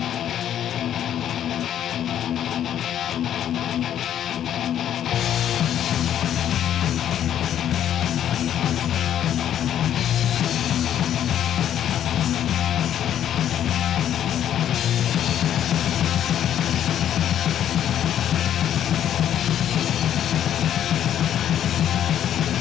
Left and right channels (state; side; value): quieter; right; 10.4 dB